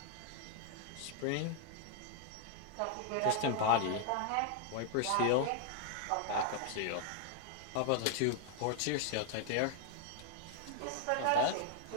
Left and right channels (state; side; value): different; both; correlation 0.00